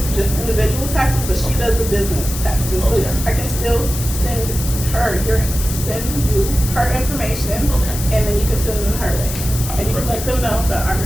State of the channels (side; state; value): left; noise; hiss, 8 dB below the sound